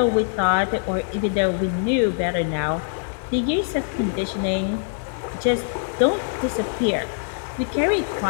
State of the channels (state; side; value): silent; right; 55 dB below the other